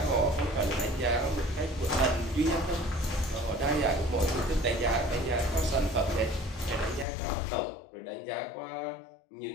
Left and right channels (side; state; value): right; drops out; at 7.1 s